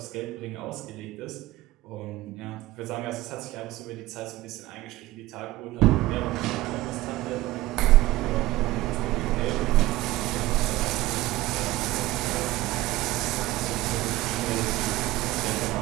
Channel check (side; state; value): left; quieter; 17.4 dB